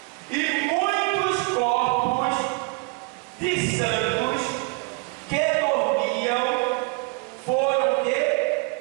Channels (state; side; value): quieter; left; 30.4 dB